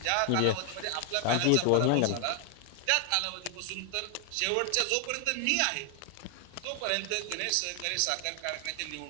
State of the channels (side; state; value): both; different; correlation 0.00